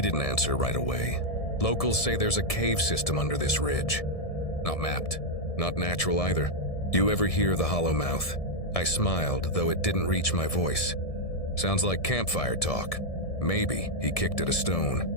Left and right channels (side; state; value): right; late; 1.7 ms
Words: didn't answer right away. Locals say there's a cave system under this ridge. Not mapped, not natural either. You ever hear the hollow mouth? I smiled, though it didn't reach my voice. Sounds like campfire talk. Maybe he kicked at a